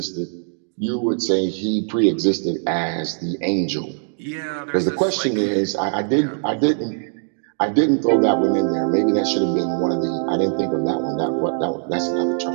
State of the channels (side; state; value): left; silent; digital silence